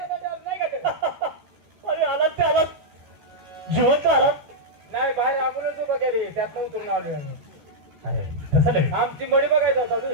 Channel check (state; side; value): late; left; 14 ms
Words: का ते? अरे आलात ते आलात जिवंत आलात. नाही बाहेर आपणच उभा केली त्यातनं उतरून आलोय आम्ही. अरे तसं नाही आमची मडी बघायचा होता